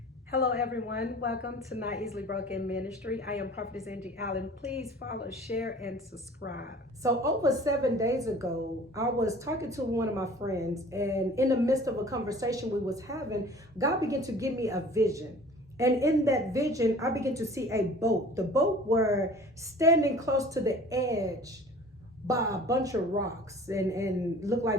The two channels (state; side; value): normal; both; correlation 0.46